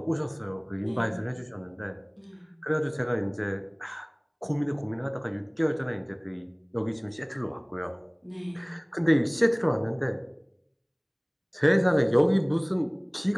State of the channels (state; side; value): identical; both; correlation 1.00